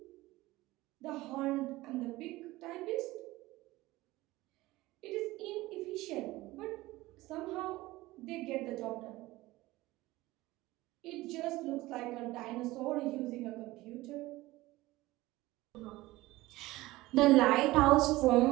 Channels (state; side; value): quieter; left; 18.7 dB